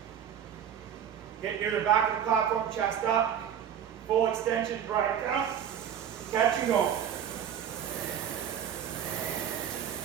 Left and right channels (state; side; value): quieter; left; 8.9 dB